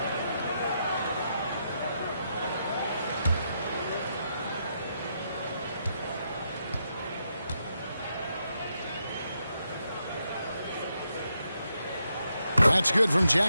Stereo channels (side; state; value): both; inverted; correlation -0.81